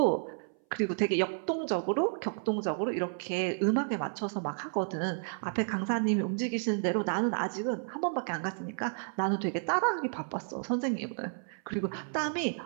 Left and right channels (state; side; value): silent; left; 57 dB below the other